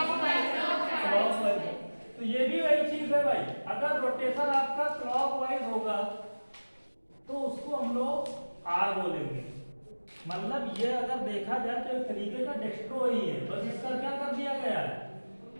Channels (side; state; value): both; inverted; correlation -1.00